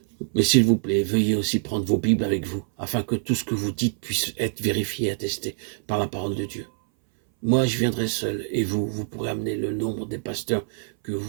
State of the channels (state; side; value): silent; left; 60 dB below the other